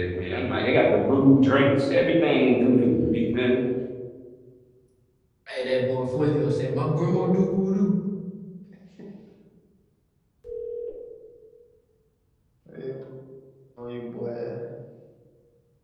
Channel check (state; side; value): identical; both; correlation 1.00